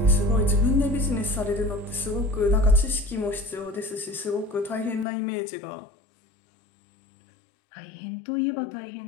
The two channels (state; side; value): drops out; right; at 5.1 s